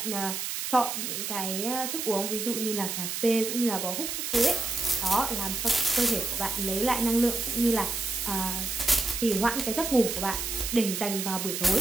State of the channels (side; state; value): right; noise; hiss, 3 dB below the sound